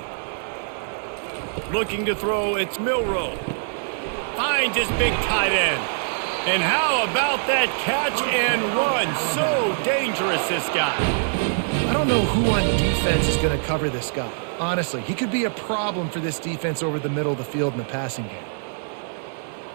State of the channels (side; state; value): left; silent; 55 dB below the other